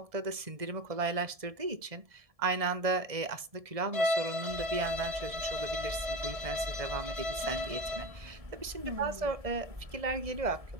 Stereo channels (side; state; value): left; late; 1.7 ms